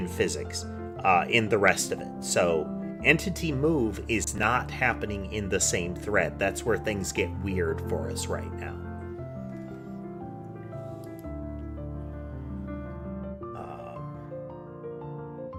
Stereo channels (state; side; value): identical; both; correlation 1.00